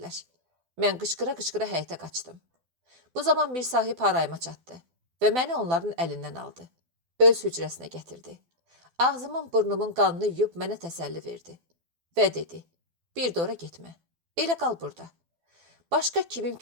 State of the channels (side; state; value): left; late; 12 ms